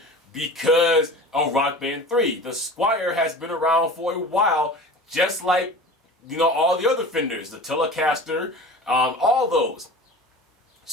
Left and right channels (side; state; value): both; normal; correlation 0.37